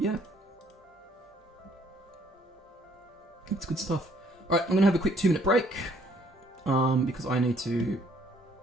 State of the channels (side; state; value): both; normal; correlation 0.64